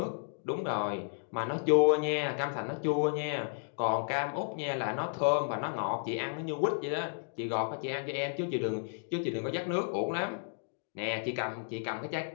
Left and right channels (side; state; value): right; silent; digital silence